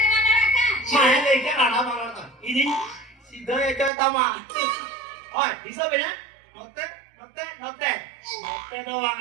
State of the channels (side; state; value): left; drops out; at 3.9 s